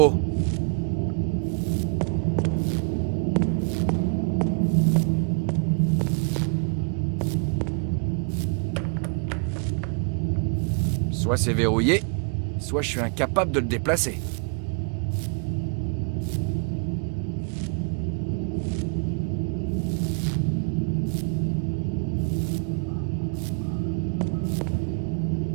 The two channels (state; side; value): quieter; left; 39.1 dB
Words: haut. Soit c'est verrouillé, soit je suis incapable de le déplacer.